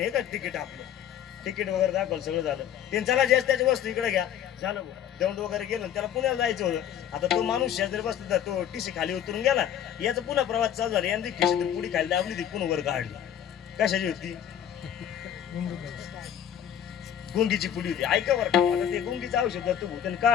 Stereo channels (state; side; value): quieter; right; 10.0 dB